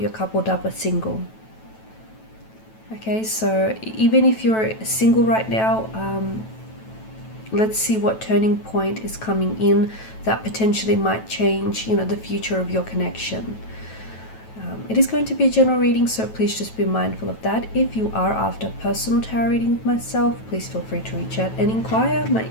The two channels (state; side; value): late; right; 9.1 ms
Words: coupled up or single. Okay, so even if you're single right now, let's see what turning point is coming in that potentially might change, the future of your connection. It is going to be a general reading, so please just be mindful of that. If you are after a personal tarot reading with myself, please feel free to reach out and inquire. My